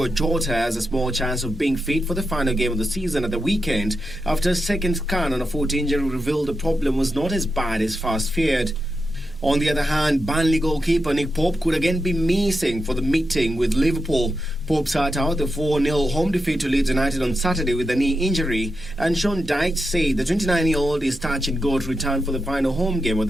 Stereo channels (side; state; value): both; normal; correlation 0.87